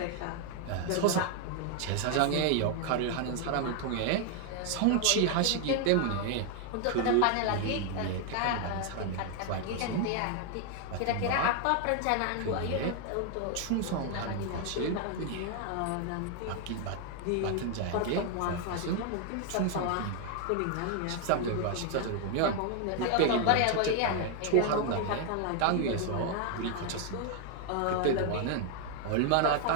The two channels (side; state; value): both; different; correlation 0.00